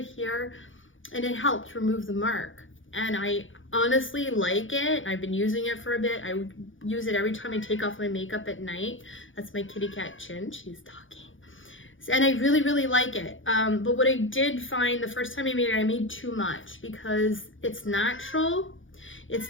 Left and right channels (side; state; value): right; late; 0.57 ms